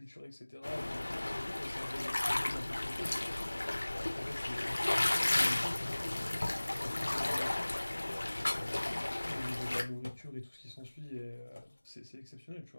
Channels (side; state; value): both; inverted; correlation -1.00